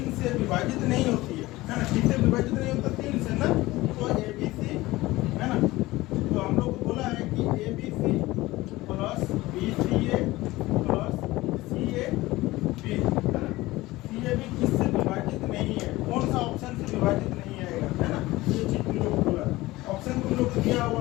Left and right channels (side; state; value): right; quieter; 18.9 dB